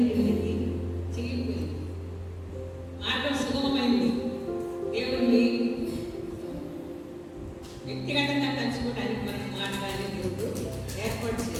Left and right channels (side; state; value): both; identical; correlation 1.00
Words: కిందికి చిరిగిపోయింది. మార్గం సుగమమైంది. దేవుణ్ణి వ్యక్తిగతంగా కలుసుకోవడానికి మనకి మార్గాన్ని దేవుడు ఏర్పాటు